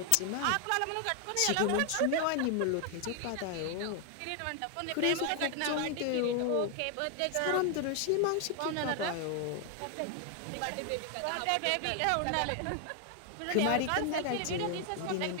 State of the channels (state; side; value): different; both; correlation 0.00